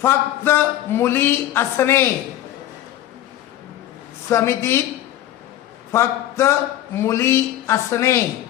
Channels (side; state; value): right; quieter; 13.1 dB